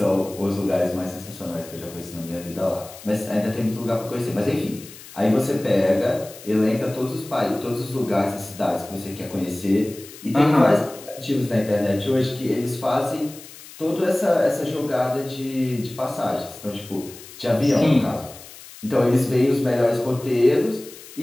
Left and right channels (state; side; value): noise; left; hiss, 17 dB below the sound